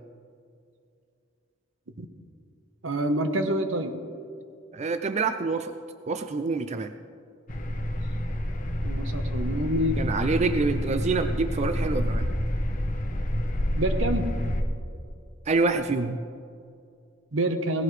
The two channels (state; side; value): normal; both; correlation 0.54